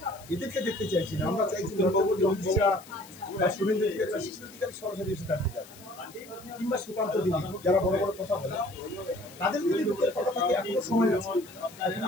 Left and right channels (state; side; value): noise; left; hiss, 21 dB below the sound